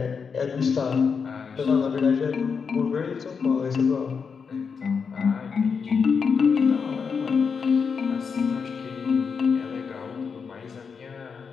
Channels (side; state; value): right; quieter; 5.9 dB